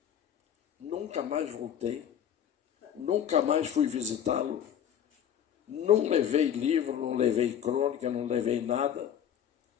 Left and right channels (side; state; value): right; quieter; 9.3 dB